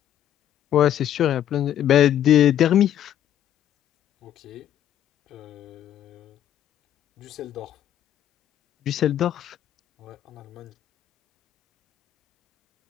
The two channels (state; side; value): quieter; right; 11.0 dB